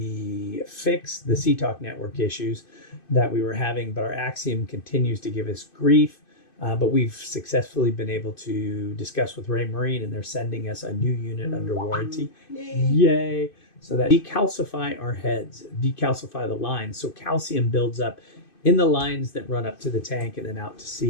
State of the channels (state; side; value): late; right; 2.6 ms